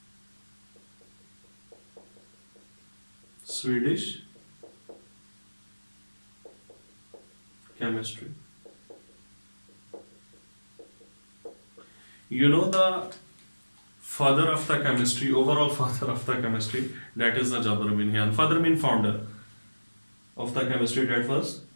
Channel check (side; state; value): both; inverted; correlation -1.00